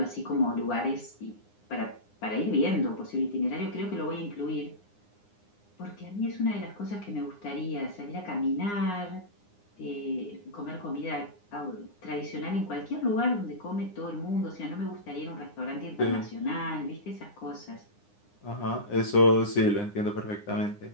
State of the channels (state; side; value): late; right; 9.8 ms